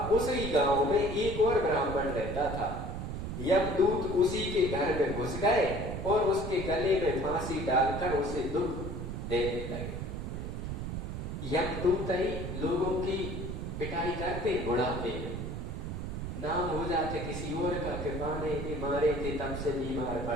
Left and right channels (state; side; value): noise; right; rumble, 5 dB below the sound